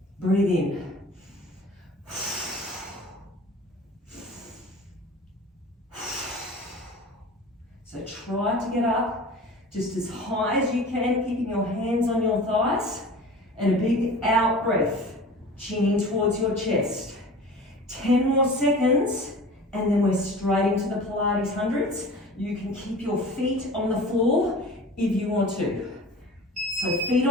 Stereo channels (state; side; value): normal; both; correlation 0.39